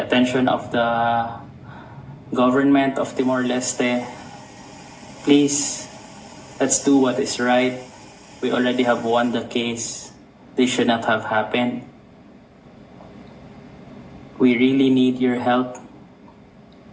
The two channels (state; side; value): identical; both; correlation 1.00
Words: of the government of Timor-Leste. Please, let's do what is right. We already have won the case. This should not have happened. We really need your help